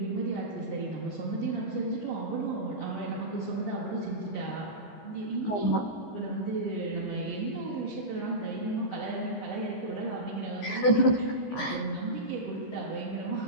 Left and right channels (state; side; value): late; right; 14 ms